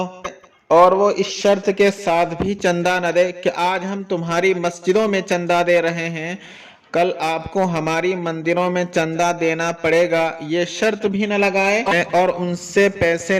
اور وہ اس شرط کے ساتھ بھی چندہ نہ دے کہ آج ہم تمہاری مسجدوں میں چندہ دے رہے ہیں، کل آپ کو ہماری مندروں میں چندہ دینا پڑے گا، یہ شرط بھی نہ لگائے، اور ان سے پیسے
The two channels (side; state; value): both; identical; correlation 1.00